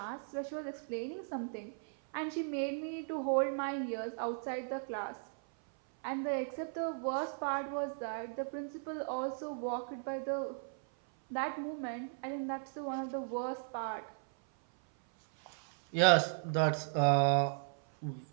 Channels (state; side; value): silent; left; 54 dB below the other